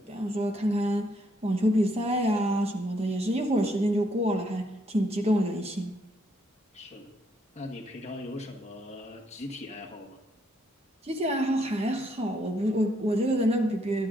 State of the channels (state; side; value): normal; both; correlation 0.72